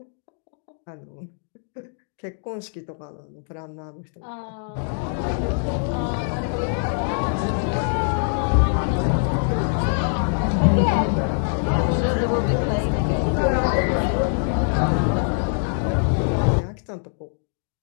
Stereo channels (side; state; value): right; silent; digital silence